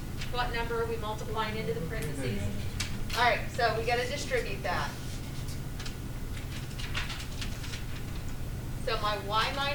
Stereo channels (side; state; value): both; identical; correlation 1.00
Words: What number are we multiplying into the parentheses? All right, so we got to distribute that. So my y